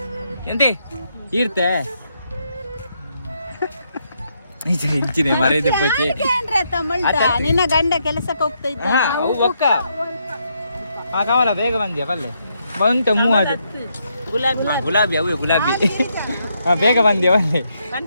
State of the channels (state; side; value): inverted; both; correlation -0.77